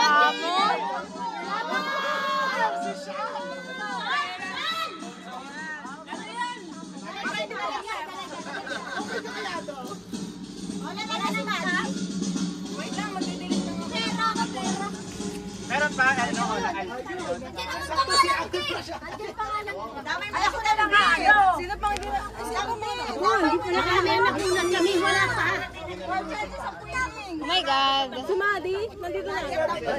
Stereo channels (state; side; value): identical; both; correlation 1.00